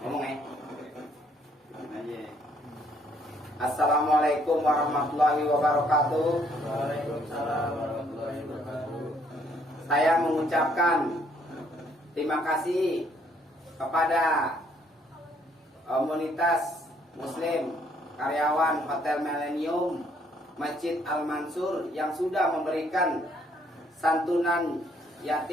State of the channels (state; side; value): normal; both; correlation 0.67